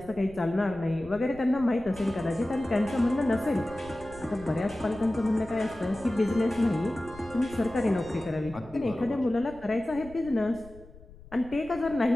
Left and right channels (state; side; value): noise; left; rumble, 20 dB below the sound